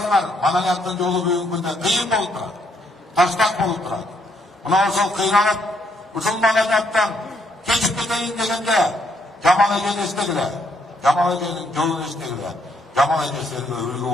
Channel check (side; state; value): both; normal; correlation 0.72